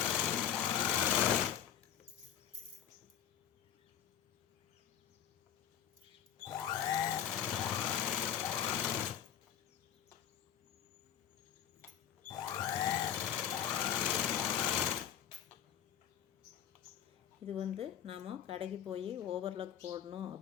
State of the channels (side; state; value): right; quieter; 9.6 dB